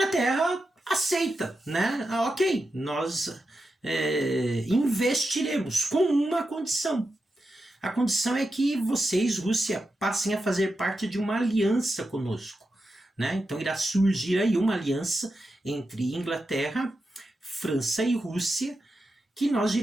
aceita, né? Ok, nós investiremos com uma condição. A condição é que vocês, Rússia, passem a fazer parte de uma aliança conosco, né? Então irá surgir aí uma aliança entre Inglaterra, França e Rússia, que nós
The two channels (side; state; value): both; normal; correlation 0.89